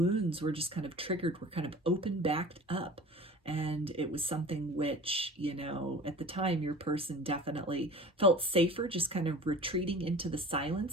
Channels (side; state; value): both; normal; correlation 0.40